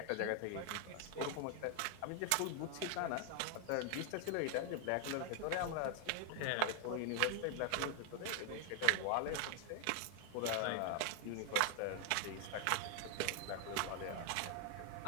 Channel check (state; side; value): different; both; correlation 0.00